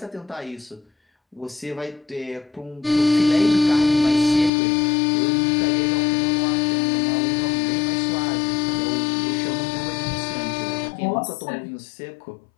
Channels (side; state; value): right; drops out; at 4.5 s